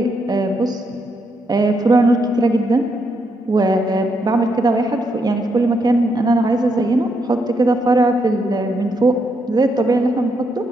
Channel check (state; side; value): normal; both; correlation 0.78